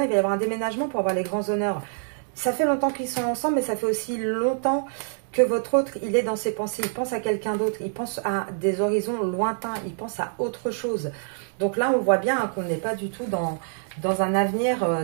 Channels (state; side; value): silent; left; 61 dB below the other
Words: il va y avoir un déménagement pour avoir les grands honneurs. Ça fait longtemps qu'ils sont ensemble, mais ça fait aussi longtemps que votre autre, il est dans ses pensées. Il pense à quelqu'un d'autre. Il pense à des horizons lointains. Il pense à autre chose. Donc là, on voit bien hein, qu'on n'est pas du tout dans un avenir